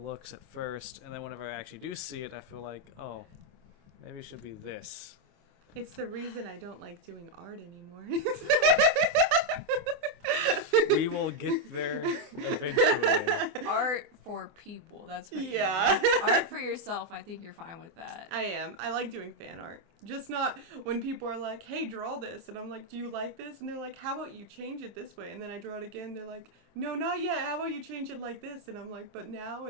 at first, and then whenever I actually do see it, I feel like, oh, maybe it should be this. It's the reason I don't like doing art anymore. We will get there eventually. Art for people. That's what Yeah. you mean. Art for yourself. I think you're fine with that. I am. I like doing fan art. Just not when people are like, hey, draw this. And I'm like, do you like this? And they're like, how about you change it this way? And then I draw it again. They're like, no, not yet. How about you change it like this? And I'm like, but now?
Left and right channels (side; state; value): left; late; 24 ms